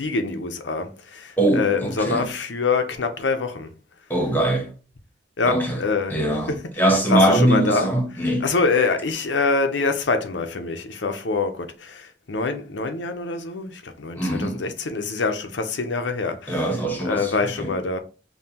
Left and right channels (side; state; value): both; normal; correlation 0.29